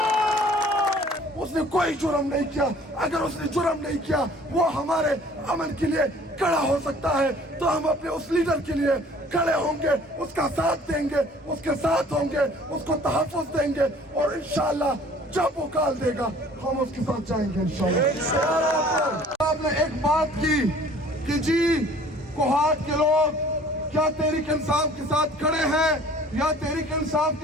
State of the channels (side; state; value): both; normal; correlation 0.52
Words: اس نے کوئی جرم نہیں کیا. اگر اس نے جرم نہیں کیا وہ ہمارے امن کے لیے کھڑا ہو سکتا ہے تو ہم اپنے اس لیڈر کے لیے کھڑے ہوں گے, اس کا ساتھ دیں گے, اس کے ساتھ ہوں گے, اس کو تحفظ دیں گے اور انشاءاللہ جب وہ کال دے گا ہم اس کے ساتھ جائیں گے انشاءاللہ. آپ نے ایک بات کی کہ جی کوہاٹ کے لوگ کیا تحریک انصاف کے ساتھ کھڑے ہیں یا تحریک انصاف